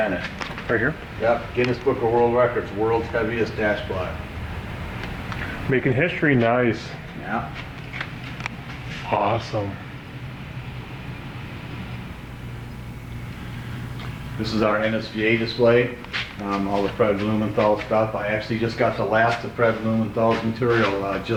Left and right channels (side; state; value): both; identical; correlation 1.00